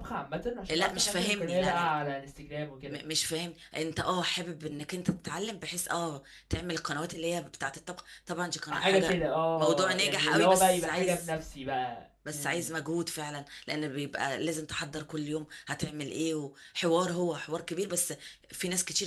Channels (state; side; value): identical; both; correlation 1.00